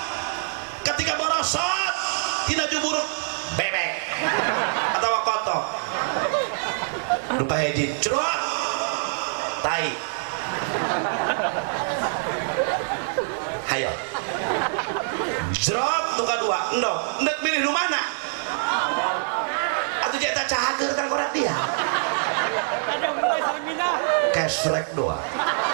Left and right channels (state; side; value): silent; left; digital silence